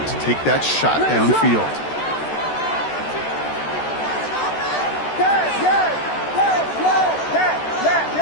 take that shot downfield.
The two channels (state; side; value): late; right; 13 ms